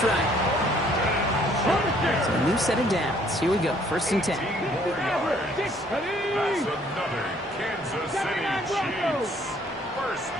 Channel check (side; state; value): both; normal; correlation 0.62